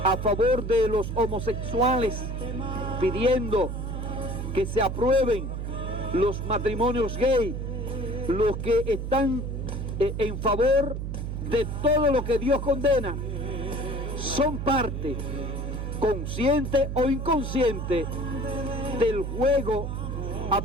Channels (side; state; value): right; noise; hum, 4 dB below the sound